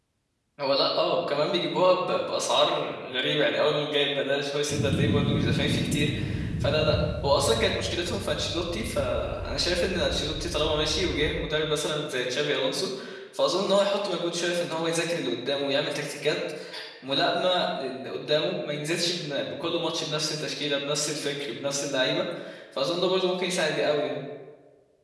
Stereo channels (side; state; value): both; identical; correlation 1.00